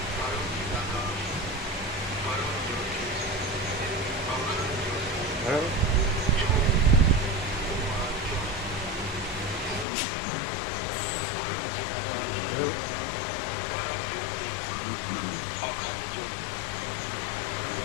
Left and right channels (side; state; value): right; drops out; at 9.9 s